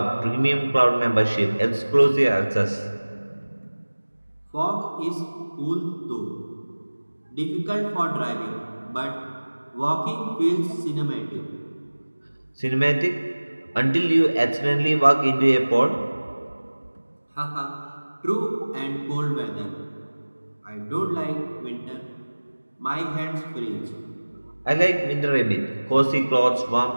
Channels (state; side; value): inverted; both; correlation -1.00